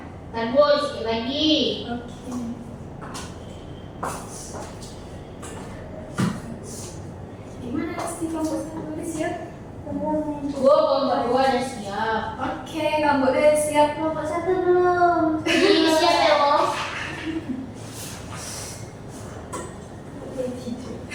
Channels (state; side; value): identical; both; correlation 1.00